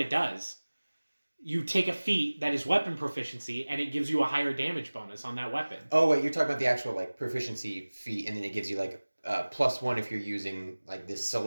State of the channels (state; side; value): inverted; both; correlation -1.00